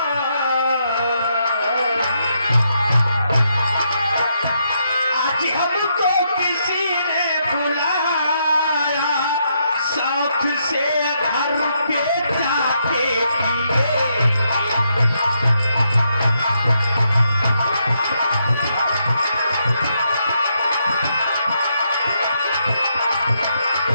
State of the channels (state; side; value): inverted; both; correlation -0.77